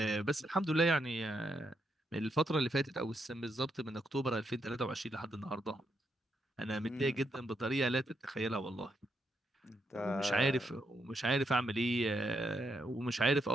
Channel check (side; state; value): both; normal; correlation 0.79